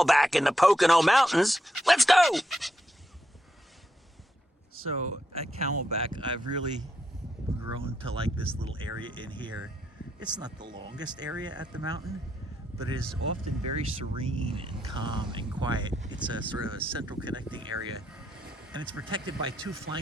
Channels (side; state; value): both; normal; correlation 0.80